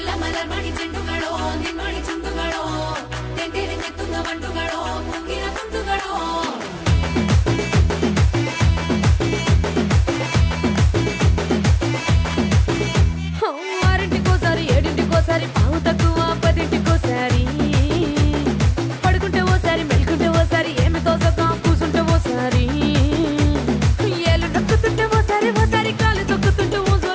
ಮಲರ್ ಮಣಿ ಚೆಂಡುಗಳೋ ನಿಮ್ಮಣಿ ಚುಂಡುಗಳೋ ತೆಂಟೆರೆ ನೆತ್ತುಂಗ ಬಂಡುಗಳೋ ಮುಂಗಿನ ತುಂಡುಗಳೋ ఆరింటికోసారి ఏడింటికోసారి పావు తక్కువ పదింటికోసారి పడుకుంటే ఓసారి మెలుకుంటే ఓసారి ఏమి తోసక కూసుంటే ఓసారి ఏలు నొక్కుతుంటే ఓసారి ఓసారి కాలు తొక్కుతుంటే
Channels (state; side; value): identical; both; correlation 1.00